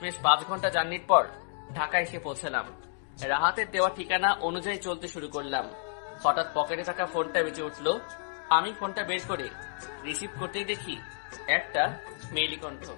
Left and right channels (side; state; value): right; silent; digital silence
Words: 5 ঘন্টা জার্নির পর ঢাকায় এসে পৌঁছালাম। রাহাতের দেওয়া ঠিকানা অনুযায়ী চলতে শুরু করলাম। হঠাৎ পকেটে থাকা ফোনটা বেজে উঠল। আমি ফোনটা বের করে রিসিভ করতেই দেখি একটা মেইলি কণ্ঠ।